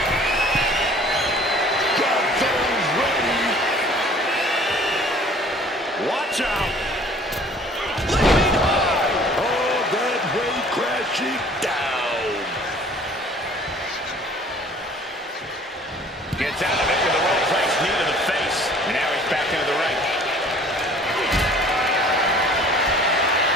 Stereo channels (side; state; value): both; normal; correlation 0.52